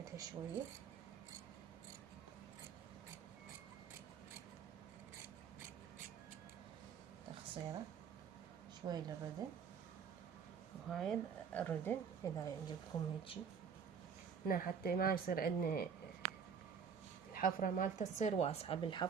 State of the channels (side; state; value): left; quieter; 6.7 dB